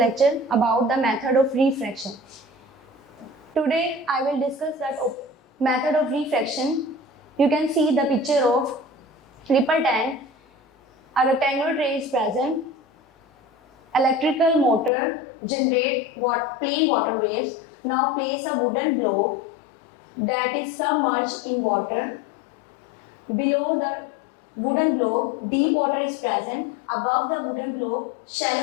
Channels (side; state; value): right; drops out; at 14.9 s